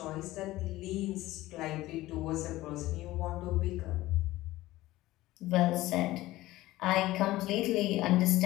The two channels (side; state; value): right; quieter; 17.1 dB